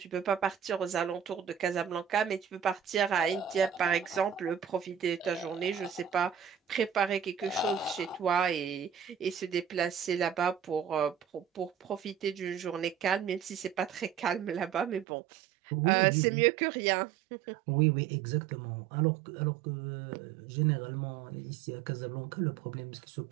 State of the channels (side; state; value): left; drops out; at 15.1 s